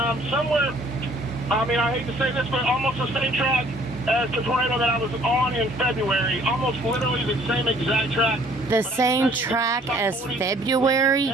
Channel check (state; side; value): normal; both; correlation 0.58